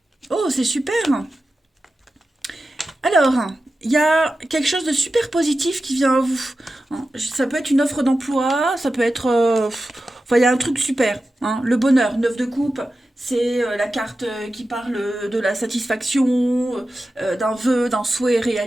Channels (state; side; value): normal; both; correlation 0.93